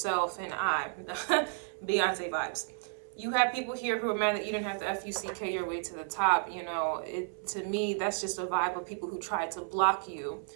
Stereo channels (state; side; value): silent; left; 56 dB below the other